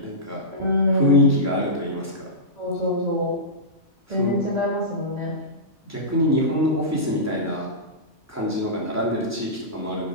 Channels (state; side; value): normal; both; correlation -0.17